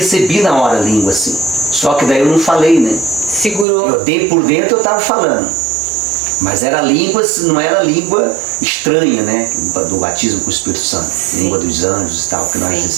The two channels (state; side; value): drops out; left; at 3.7 s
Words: na hora a língua assim. Só que daí eu não falei, né? Segurou. Por dentro eu estava falando. Mas era língua, não era língua estranha, né? Do batismo com o Espírito Santo. Sim. Língua dos anjos e tal, que nós